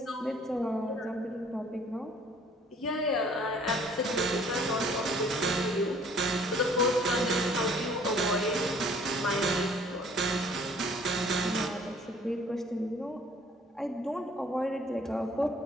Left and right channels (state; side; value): normal; both; correlation 0.56